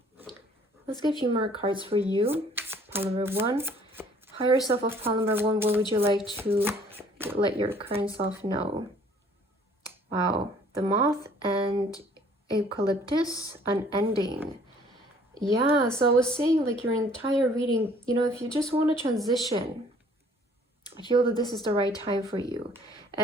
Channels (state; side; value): normal; both; correlation 0.57